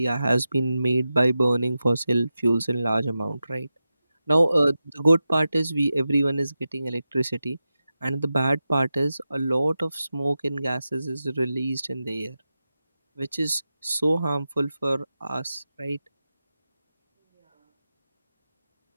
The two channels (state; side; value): inverted; both; correlation -0.92